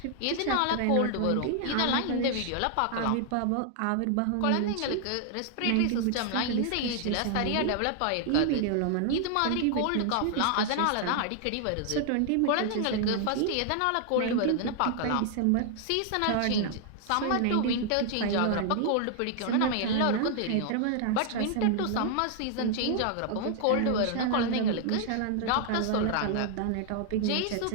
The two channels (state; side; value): different; both; correlation 0.00